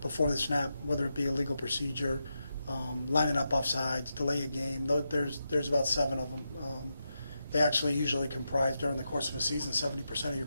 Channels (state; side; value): inverted; both; correlation -0.87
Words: before the snap, whether it be a legal procedure, lining up offsides, delay a game, there's about 7 of them. They actually usually comprise during the course of a season 70% of your